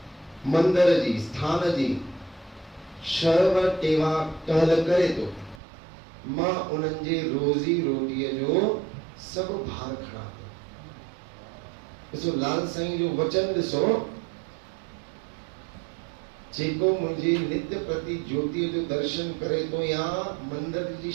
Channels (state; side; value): drops out; left; at 5.6 s